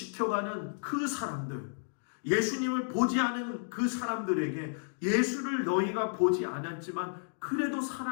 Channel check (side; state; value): right; silent; digital silence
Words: 그 사람들, 예수님을 보지 않은 그 사람들에게 예수를 너희가 보지 않았지만 그래도